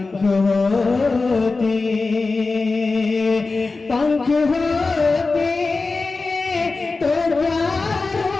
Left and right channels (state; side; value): quieter; right; 3.8 dB